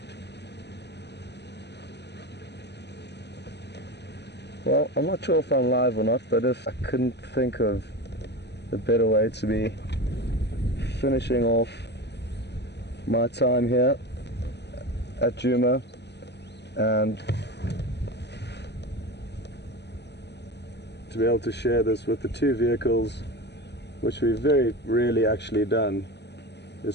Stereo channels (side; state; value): right; late; 0.50 ms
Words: Well, I'm not sure if I'm live or not, but if I couldn't think of a better way to be finishing off my time here at Djuma and to be able to share this with the two vehicles, which we've very rarely actually done,